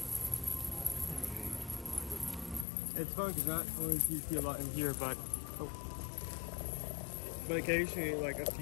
It's fun because not only do you see a lot in here, but occasionally, like a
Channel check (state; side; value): drops out; right; at 2.7 s